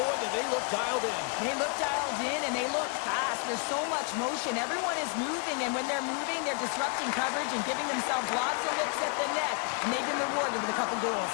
do they look dialed in. They look dialed in, and they look fast. There's so much motion. Everyone is moving, and when they're moving, they're disrupting coverage and giving themselves lots of looks at the net, and they've been rewarded with a couple goals.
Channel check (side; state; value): right; quieter; 37.5 dB